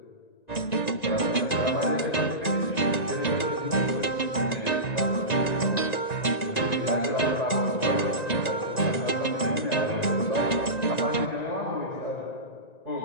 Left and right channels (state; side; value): late; right; 1.9 ms